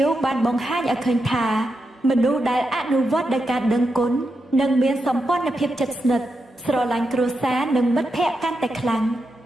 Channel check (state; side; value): normal; both; correlation 0.86